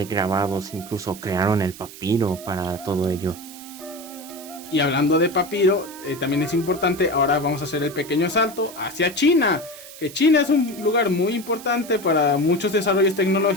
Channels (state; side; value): noise; right; hiss, 16 dB below the sound